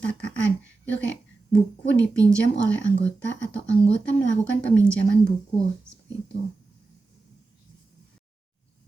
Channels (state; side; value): quieter; left; 3.6 dB